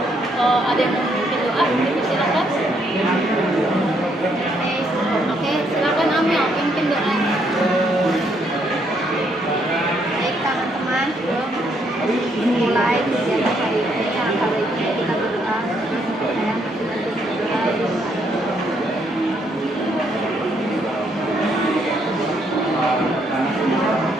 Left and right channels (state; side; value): normal; both; correlation 0.72